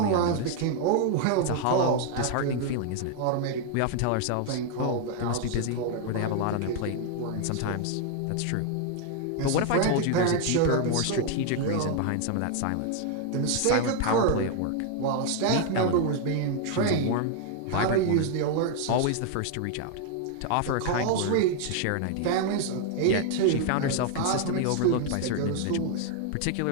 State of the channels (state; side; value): different; both; correlation 0.00